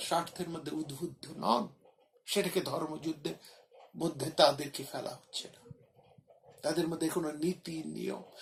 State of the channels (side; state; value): both; identical; correlation 1.00